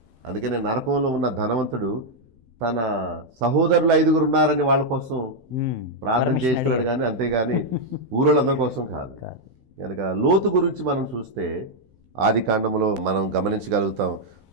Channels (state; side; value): late; left; 16 ms